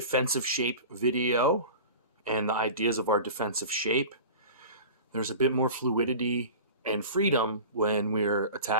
shape video and the ideas of our defensive shape, there's a bit more fluidity and freedom when we're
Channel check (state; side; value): inverted; both; correlation -0.36